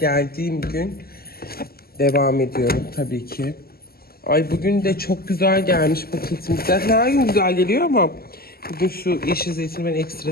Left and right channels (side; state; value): right; late; 0.45 ms